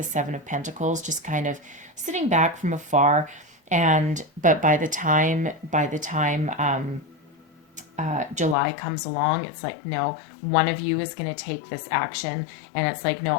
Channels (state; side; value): drops out; right; at 8.6 s